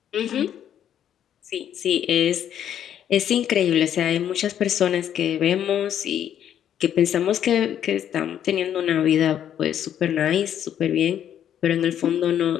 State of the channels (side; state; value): right; quieter; 10.0 dB